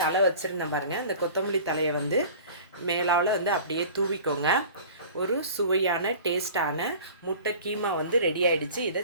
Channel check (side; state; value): both; inverted; correlation -0.42